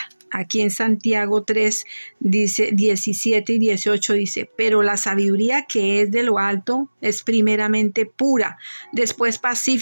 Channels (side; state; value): both; inverted; correlation -1.00